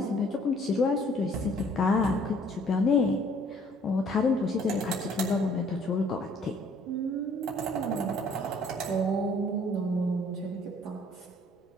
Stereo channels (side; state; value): both; normal; correlation 0.58